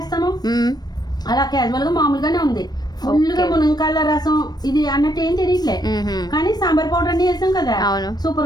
అలా క్యాజువల్ గా మామూలుగానే ఉంది. ఫుల్గా మునక్కాయల రసం ఇది అన్నట్టు ఏం తెలియట్లే, కానీ సాంబార్ పౌడర్ అన్ని వేసాం కదా,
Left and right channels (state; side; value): late; right; 0.19 ms